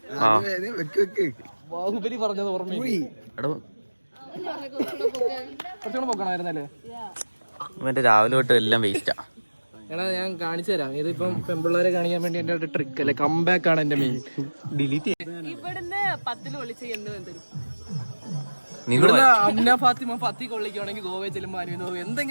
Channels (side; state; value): both; inverted; correlation -1.00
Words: ബാഹുബലി പറഞ്ഞത് ഓർമ്മയില്ലേ? പോക്കണായിരുന്നല്ലേ? മറ്റേ രാവിലെ തൊട്ട് എല്ലാം വേസ്റ്റാ. എടാ ഞാൻ കാണിച്ചു തരാം. ഇതിപ്പം പെൺപിള്ളേരെ കാണിക്കാൻ വേണ്ടി എന്റെ ഒരു ട്രിക്ക് അല്ലേ, കംബാക്ക് ആണ് എന്റെ മെയിൻ. ഡിലീറ്റ് ഇവിടുന്ന് 10 ഒളിച്ച് എന്ത് അമ്ന ഫാത്തിമ ഫത്തി കൊള്ളിക്കുവാണെങ്കിൽ ഗോവയിൽ ചെല്ലുമ്പോൾ